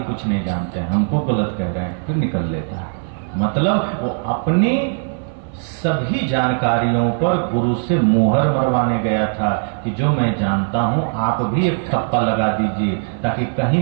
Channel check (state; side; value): silent; left; 55 dB below the other